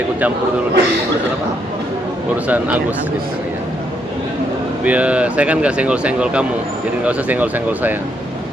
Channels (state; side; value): normal; both; correlation 0.75